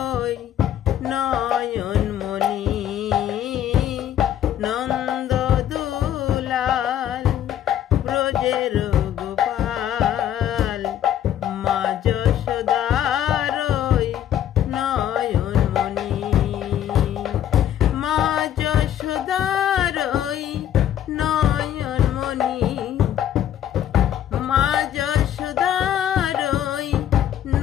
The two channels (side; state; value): right; quieter; 10.8 dB